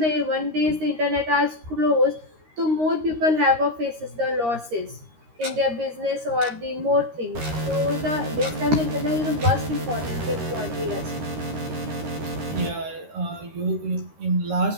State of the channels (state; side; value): late; left; 13 ms